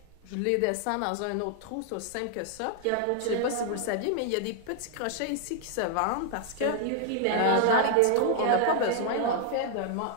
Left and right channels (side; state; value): both; different; correlation 0.00